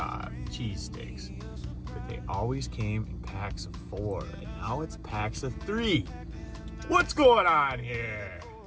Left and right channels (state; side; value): identical; both; correlation 1.00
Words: cheese sticks, but they always came in packs of 4, and now it's packs of 3. What's going on here?